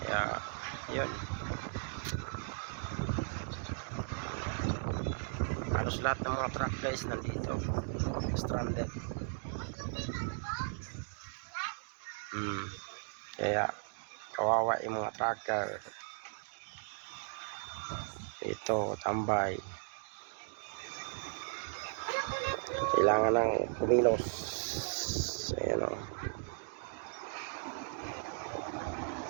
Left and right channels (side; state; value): left; silent; 53 dB below the other